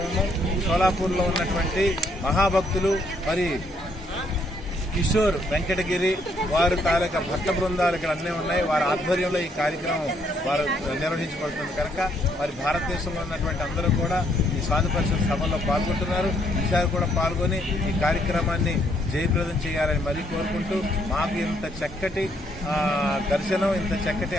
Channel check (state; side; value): normal; both; correlation 0.70